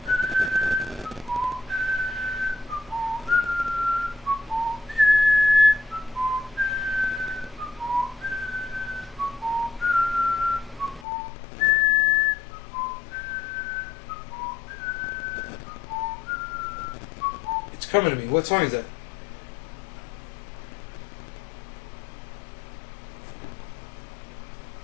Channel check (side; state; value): right; drops out; at 11.1 s